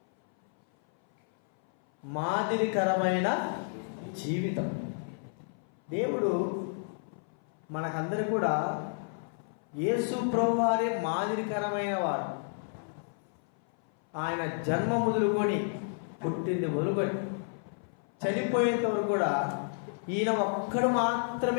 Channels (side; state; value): right; silent; 57 dB below the other